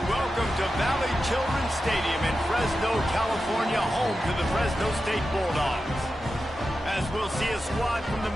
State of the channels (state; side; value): normal; both; correlation 0.91